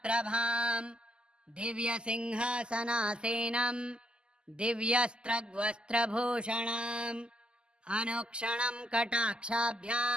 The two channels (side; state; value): left; late; 0.049 ms